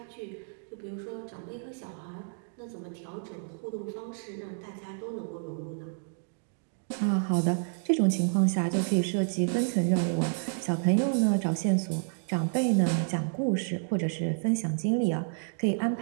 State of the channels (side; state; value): left; silent; digital silence